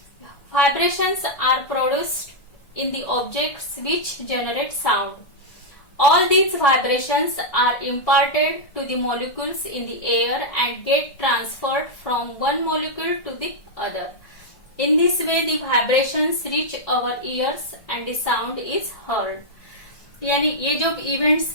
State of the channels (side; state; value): right; late; 1.6 ms